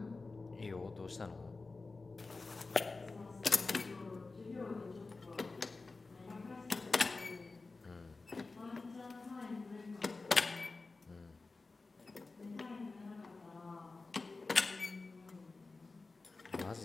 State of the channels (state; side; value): quieter; right; 3.7 dB